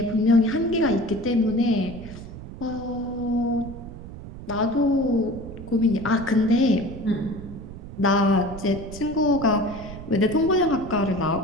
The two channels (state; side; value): noise; right; rumble, 13 dB below the sound